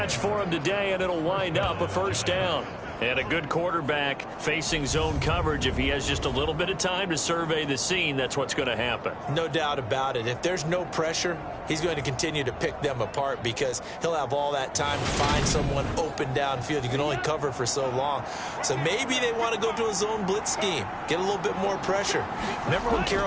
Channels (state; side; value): identical; both; correlation 1.00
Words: for him today, and it'll wind up a first down. And a good quarterback facing zone coverage. If he has just a little bit of time to survey the scene, that's what's going to happen. No doubt about it. If there's no pressure, he's going to continue to pick them apart because he'll have all that time to find someone open downfield. You can only cover for so long. So maybe they want to go to a zone blitz scheme, get a little bit more pressure. Remember when